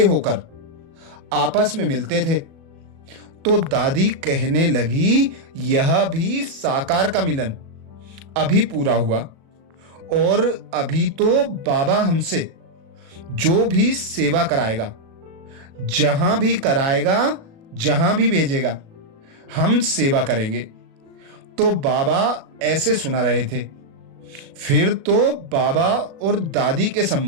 होकर आपस में मिलते थे। तो दादी कहने लगी, यह भी साकार का मिलन अभी पूरा हुआ, और अभी तो बाबा हमसे जो भी सेवा कराएगा, जहां भी कराएगा, जहां भी भेजेगा, हम सेवा करेंगे। तो बाबा ऐसे सुना रहे थे। फिर तो बाबा और दादी के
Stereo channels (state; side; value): late; left; 37 ms